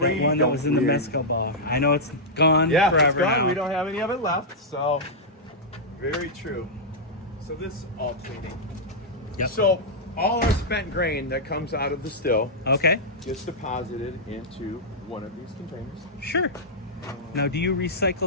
one that don't was in the really- mezcal bar. I know it's gone yeah, forever it's gone. now. We don't have any of it left. So very true. So this is all cleaning. Yep. So all our spent grain that comes out of the still Okay, gets deposited into one of these containers. sure. Now, do you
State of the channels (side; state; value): both; normal; correlation -0.08